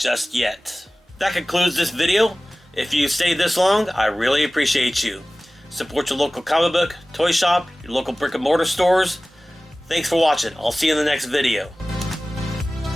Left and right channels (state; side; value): normal; both; correlation 0.98